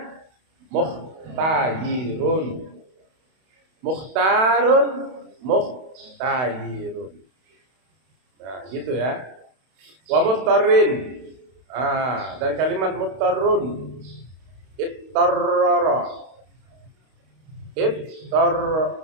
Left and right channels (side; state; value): left; late; 32 ms